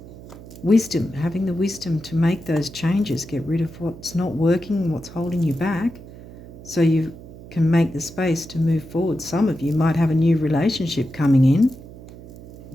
Wisdom, having the wisdom to make those changes, get rid of what's not working, what's holding you back, so you can make the space to move forward. Some of you might have a new relationship coming in,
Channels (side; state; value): right; noise; hum, 17 dB below the sound